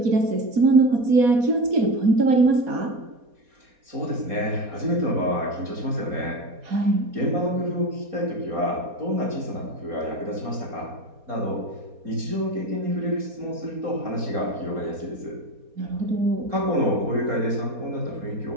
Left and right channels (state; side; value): late; left; 4.2 ms